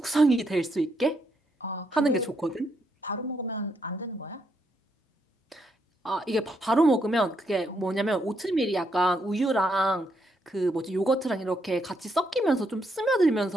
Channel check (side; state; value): both; normal; correlation 0.77